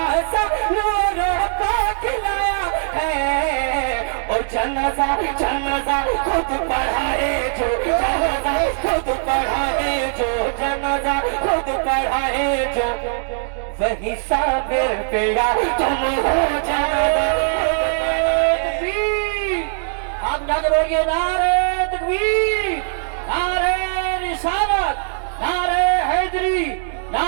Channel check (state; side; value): silent; left; digital silence